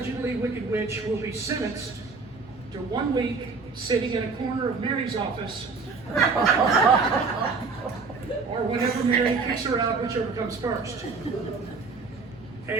wicked witch will be sentenced to 1 week sitting in a corner of Mary's office, or whenever Mary kicks her out, whichever comes first.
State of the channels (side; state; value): left; quieter; 4.5 dB